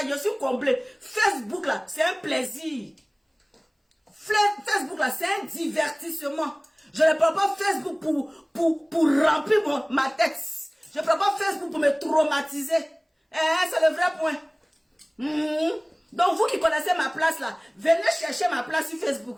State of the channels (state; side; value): identical; both; correlation 1.00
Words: Je suis comblé. Facebook là, c'est un plaisir. Facebook là, c'est un divertissement. Je ne prends pas Facebook pour remplir ma tête. Je ne prends pas Facebook pour me traumatiser. C'est le vrai point. Donc vous qui connaissez ma place là, venez chercher ma place sur